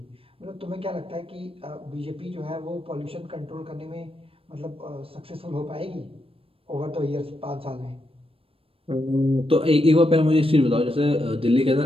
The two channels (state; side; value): late; left; 0.27 ms